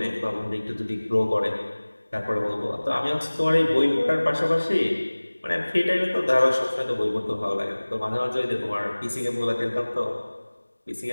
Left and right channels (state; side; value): inverted; both; correlation -1.00